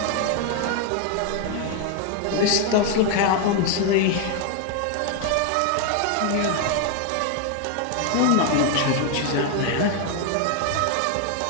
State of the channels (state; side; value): different; both; correlation 0.01